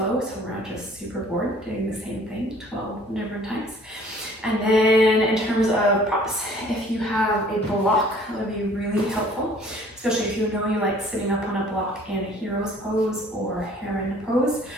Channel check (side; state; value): both; normal; correlation 0.54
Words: so we're not just super bored doing the same thing 12 different times. And then in terms of props, if you have a block, that would be really helpful, especially if you know you like sitting up on a block in a hero's pose or heron pose.